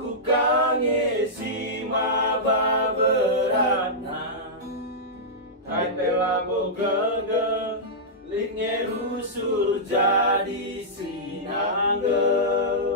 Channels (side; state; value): both; normal; correlation -0.12